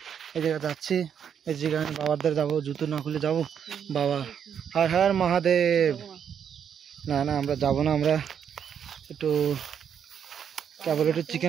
এই জায়গা যাচ্ছি, এই জায়গায় বাবার যাবো, জুতো না খুলে যাবো। বাবা হর হর মহাদেব। না আমরা যাবো না, আমরা একটু কেবল একটু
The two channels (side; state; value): left; quieter; 8.1 dB